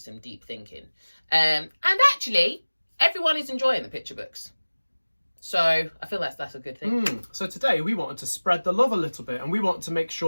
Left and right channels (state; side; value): inverted; both; correlation -1.00